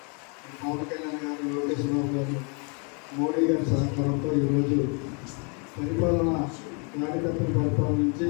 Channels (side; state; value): right; quieter; 36.4 dB